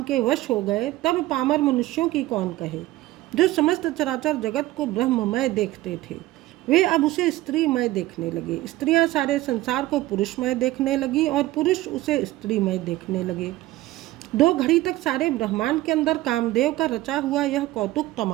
के वश हो गए, तब पामर मनुष्यों की कौन कहे। जो समस्त चराचर जगत को ब्रह्ममय देखते थे, वे अब उसे स्त्रीमय देखने लगे। स्त्रियां सारे संसार को पुरुषमय देखने लगी और पुरुष उसे स्त्रीमय देखने लगे। 2 घड़ी तक सारे ब्रह्मांड के अंदर कामदेव का रचा हुआ यह कौतुक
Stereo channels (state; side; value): quieter; left; 16.9 dB